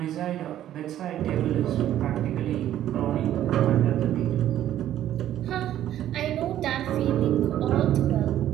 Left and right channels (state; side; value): quieter; left; 12.0 dB